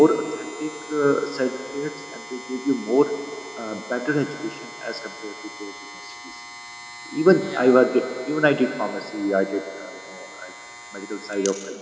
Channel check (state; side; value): identical; both; correlation 1.00